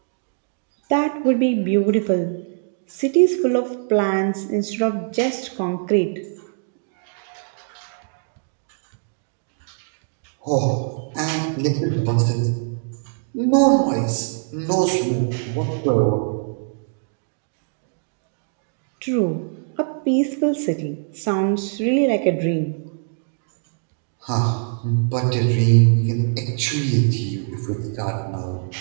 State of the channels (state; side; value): silent; left; digital silence